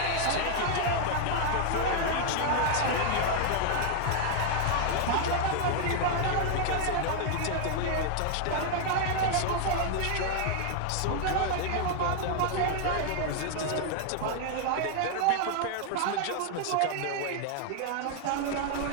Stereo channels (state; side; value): different; both; correlation 0.00